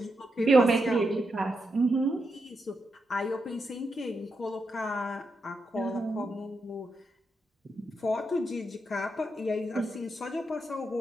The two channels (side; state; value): both; normal; correlation 0.84